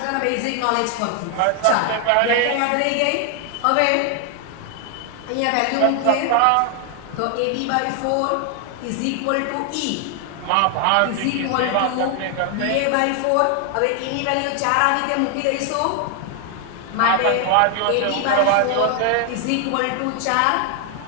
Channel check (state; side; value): different; both; correlation 0.00